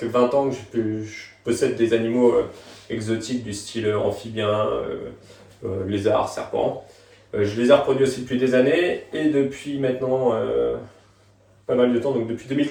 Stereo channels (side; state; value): both; identical; correlation 1.00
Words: 20 ans que je possède des animaux exotiques du style amphibien, lézard, serpent. Je les ai reproduits aussi depuis des années et depuis maintenant pas mal de temps, donc depuis